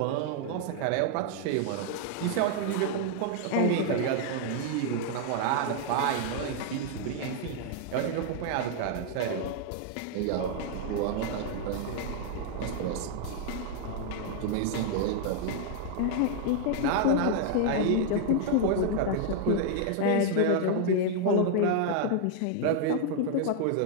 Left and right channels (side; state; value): both; different; correlation 0.00